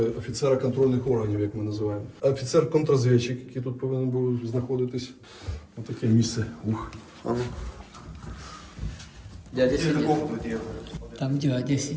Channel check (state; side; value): identical; both; correlation 1.00